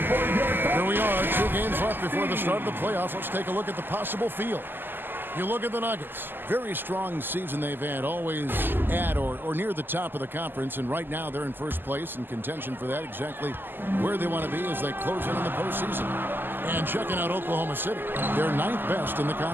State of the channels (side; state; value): left; late; 0.094 ms